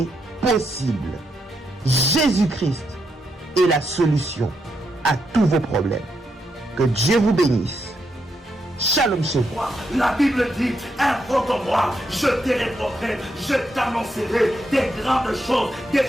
possible. Jésus-Christ est la solution à tous vos problèmes. Que Dieu vous bénisse. Shalom chez vous. La Bible dit, invoque-moi, je t'érépondrai, je t'annoncerai des grandes choses, des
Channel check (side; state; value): both; normal; correlation 0.81